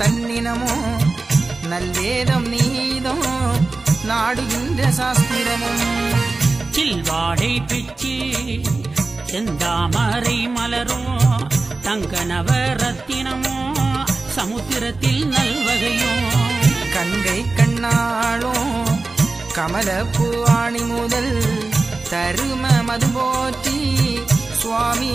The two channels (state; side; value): quieter; left; 3.5 dB